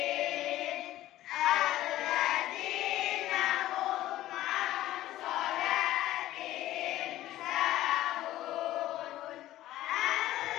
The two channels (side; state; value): right; quieter; 14.8 dB